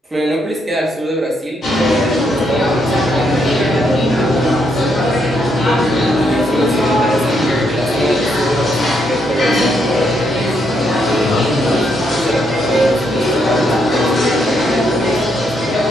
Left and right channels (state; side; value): normal; both; correlation 0.77